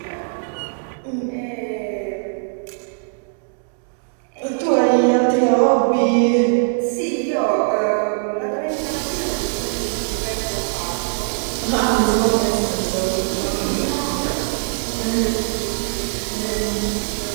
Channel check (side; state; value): left; silent; digital silence